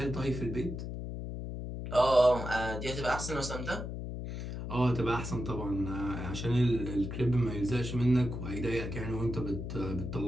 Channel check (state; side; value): noise; left; hum, 6 dB below the sound